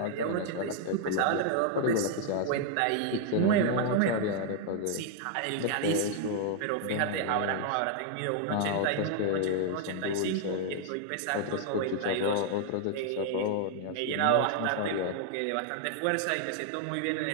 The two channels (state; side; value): different; both; correlation -0.01